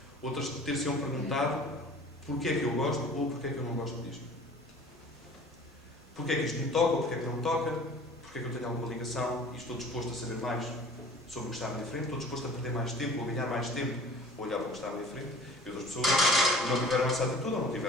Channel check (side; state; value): both; normal; correlation 0.46